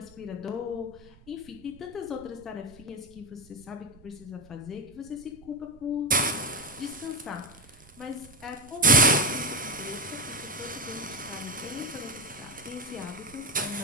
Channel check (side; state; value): right; noise; rumble, 24 dB below the sound